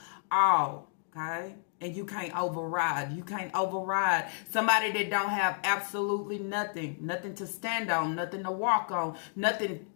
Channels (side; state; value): right; silent; digital silence